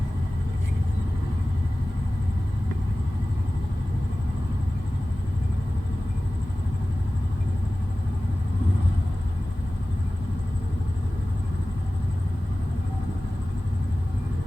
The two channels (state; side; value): normal; both; correlation 0.96